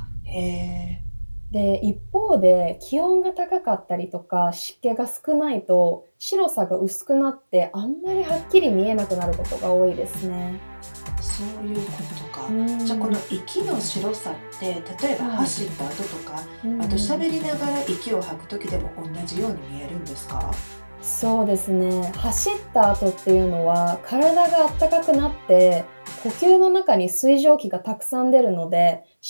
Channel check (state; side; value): inverted; both; correlation -1.00